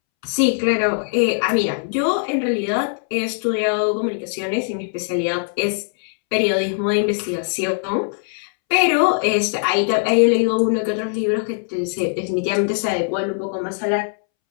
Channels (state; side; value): silent; right; 65 dB below the other